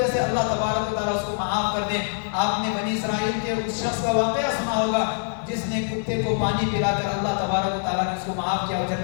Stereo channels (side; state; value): right; silent; digital silence